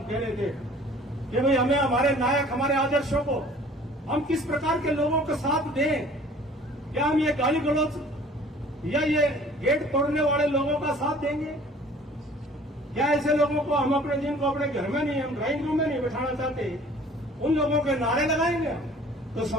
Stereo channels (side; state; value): both; normal; correlation 0.50